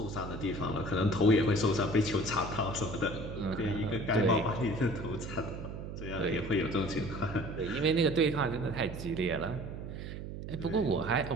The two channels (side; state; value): right; noise; hum, 8 dB below the sound